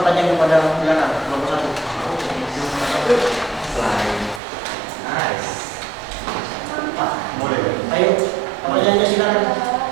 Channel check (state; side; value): drops out; left; at 4.4 s